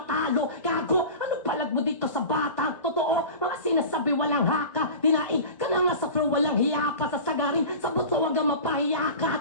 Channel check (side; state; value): both; inverted; correlation -0.35